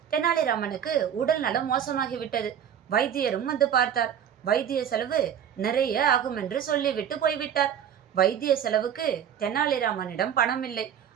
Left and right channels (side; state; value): left; quieter; 9.1 dB